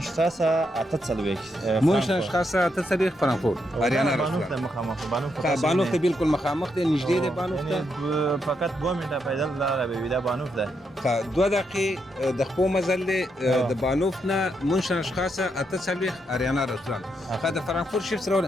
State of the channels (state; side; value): normal; both; correlation 0.80